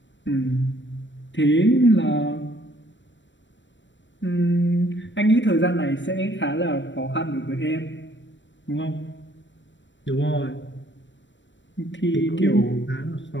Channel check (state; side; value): late; right; 0.53 ms